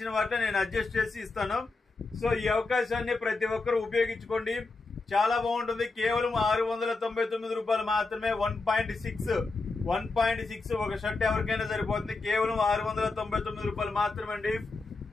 వాటిని నేను అడ్జస్ట్ చేసి ఇస్తాను. సో ఈ అవకాశాన్ని ప్రతి ఒక్కరు ఉపయోగించుకోండి. చాలా బాగుంటుంది. కేవలం 699 రూపాయలు మాత్రమే. 1.6 ఒక షర్ట్ ఎవరికైనా సరిపోతుంది. కేవలం 699 రూపాయలు మాత్రమే అండి.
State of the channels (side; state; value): right; quieter; 3.7 dB